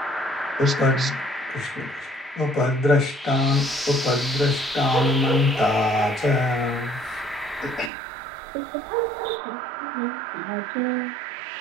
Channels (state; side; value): drops out; left; at 7.9 s